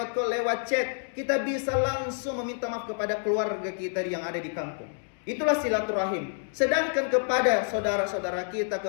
call, lewat chat. Kita bisa langsung meminta maaf kepada keluarga kita yang ada di kampung. Itulah silaturahim. Sedangkan kepada saudara-saudara kita,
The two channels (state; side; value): silent; right; digital silence